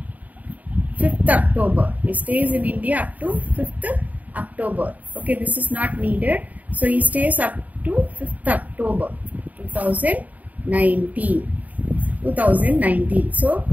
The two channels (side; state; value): left; late; 0.074 ms